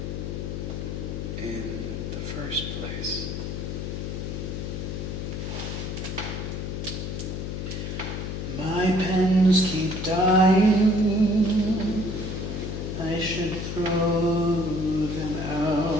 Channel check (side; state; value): left; noise; hum, 4 dB below the sound